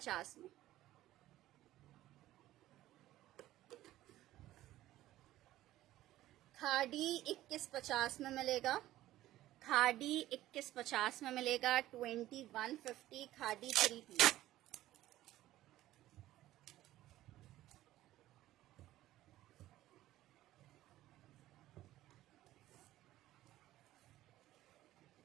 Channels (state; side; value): quieter; left; 14.8 dB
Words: में। खादी 21.50 में मिलेगा, खादी 21.50 में मिलेगा। 2150 खादी 3 पीस।